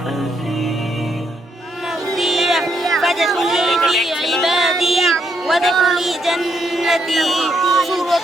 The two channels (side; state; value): both; normal; correlation 0.77